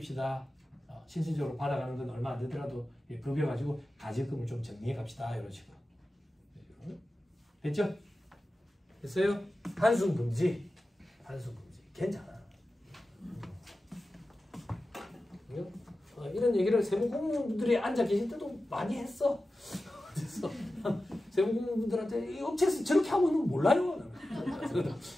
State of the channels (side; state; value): both; normal; correlation 0.94